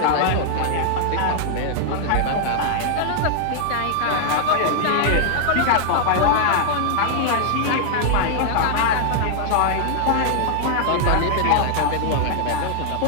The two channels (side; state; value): both; different; correlation 0.00